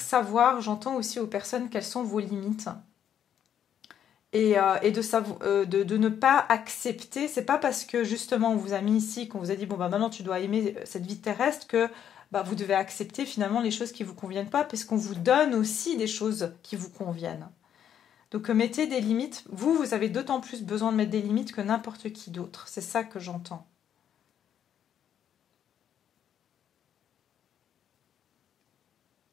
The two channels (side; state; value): right; quieter; 9.4 dB